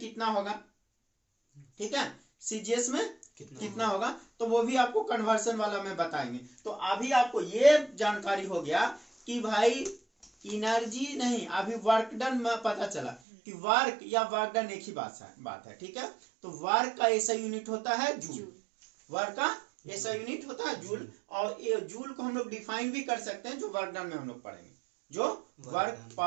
होगा, ठीक है, सीजीएस में कितना होगा, तो वो भी आपको कन्वर्सन वाला में बताएंगे। तो अभी आपको ये जानकारी हो गया कि भाई एनर्जी नहीं, अभी वर्क डन में पता चला कि वर्क या वर्क डन एक ही बात है। ठीक है, तो वर्क का ऐसा यूनिट होता है जूल, वर्क का ऐसा यूनिट होता है जूल, और ये जूल को हम लोग डिफाइन भी कर सकते हैं, जो वर्क डन में हम लोग पढ़ेंगे, जो वर्क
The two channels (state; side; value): drops out; left; at 13.2 s